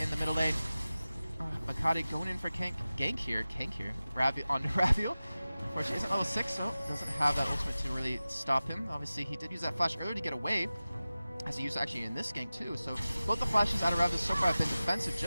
the middle lane, Makati going in for gank here. Onto Raviel. Unfortunately, he's at level 6, so doesn't have that ultimate to really stop him. Obviously, he did use that flash earlier to get away, as he used actually in this gank too. So both the flashes out of Raviel so far have been defensive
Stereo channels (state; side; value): inverted; both; correlation -0.96